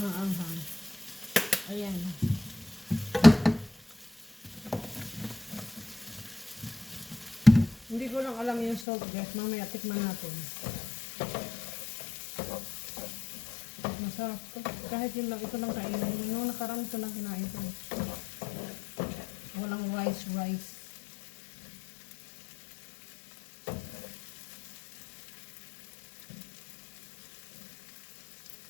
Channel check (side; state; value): right; drops out; at 8.8 s